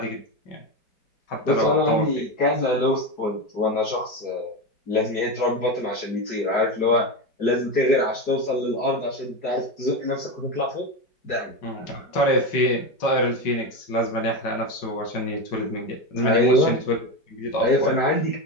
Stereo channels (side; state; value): right; late; 4.7 ms